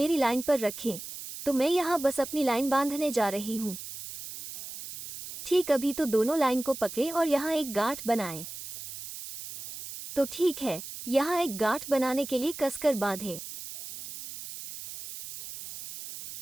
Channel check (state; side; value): noise; right; hiss, 11 dB below the sound